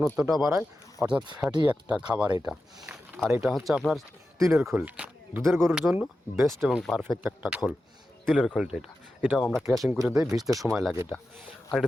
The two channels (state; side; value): normal; both; correlation 0.92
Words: বাড়ায়, অর্থাৎ ফ্যাটি একটা খাবার এটা। আর এটা হচ্ছে আপনার তিলের খোল, দুধের গরুর জন্য বেস্ট এবং পারফেক্ট একটা খোল, তিলের খোলটা। এটাও আমরা ক্র্যাশিং করে দিই, ভিজতে সময় লাগে এটা। আর এটা